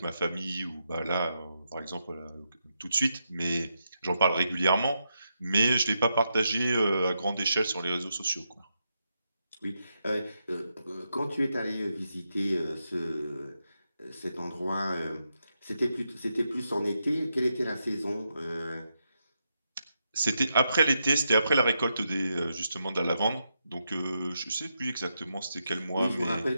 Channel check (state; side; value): inverted; both; correlation -0.84